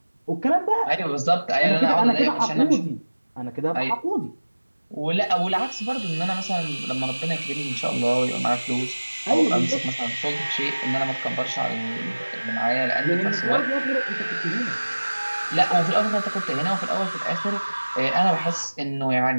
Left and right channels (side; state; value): both; inverted; correlation -1.00